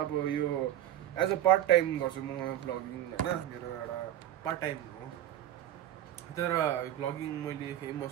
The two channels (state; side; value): quieter; left; 12.2 dB